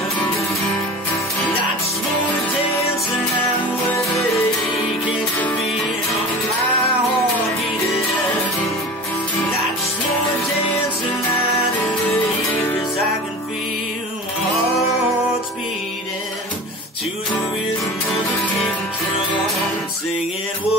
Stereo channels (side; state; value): both; normal; correlation 0.36